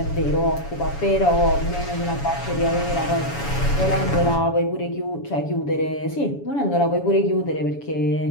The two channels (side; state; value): right; late; 7.1 ms